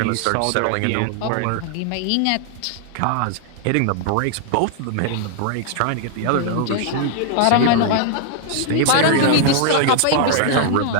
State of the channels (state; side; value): different; both; correlation 0.00